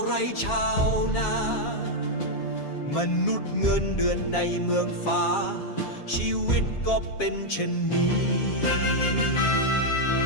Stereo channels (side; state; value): right; late; 7.3 ms